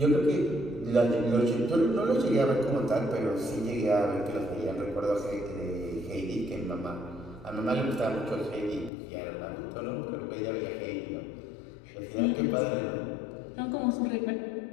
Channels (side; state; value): right; drops out; at 8.9 s